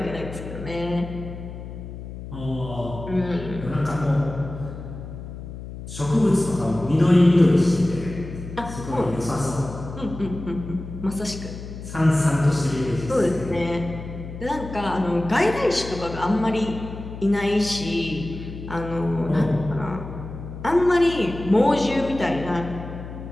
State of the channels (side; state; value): left; noise; hum, 11 dB below the sound